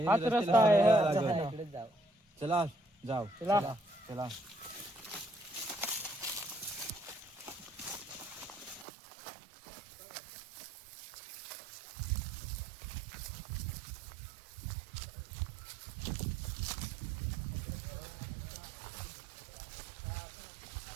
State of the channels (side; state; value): left; drops out; at 8.8 s